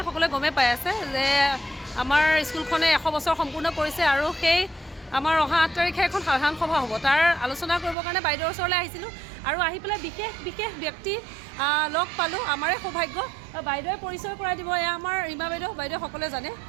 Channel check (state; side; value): drops out; left; at 8.0 s